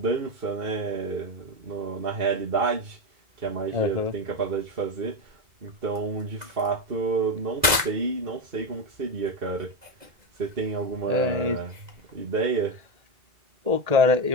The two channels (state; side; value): late; left; 1.9 ms